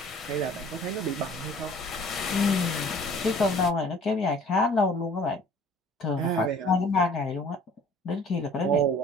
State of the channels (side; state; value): both; normal; correlation 0.51